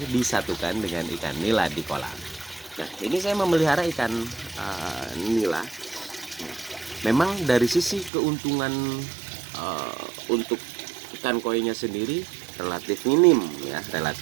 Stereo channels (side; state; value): left; drops out; at 8.1 s